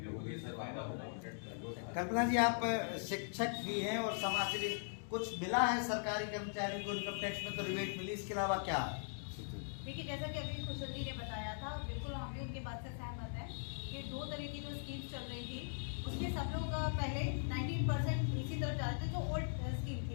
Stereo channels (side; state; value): right; silent; digital silence